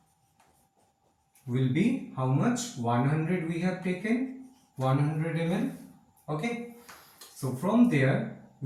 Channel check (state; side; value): identical; both; correlation 1.00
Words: will be how much? 100 we have taken, 100 ml. Okay. So from there